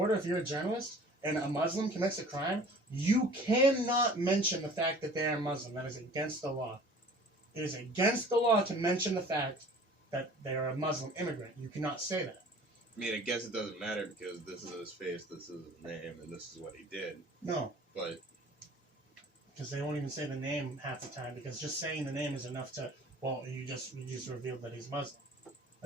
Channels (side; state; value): both; normal; correlation 0.47